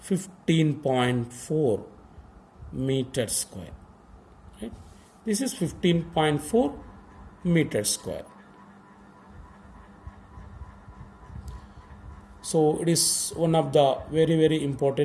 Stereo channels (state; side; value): identical; both; correlation 1.00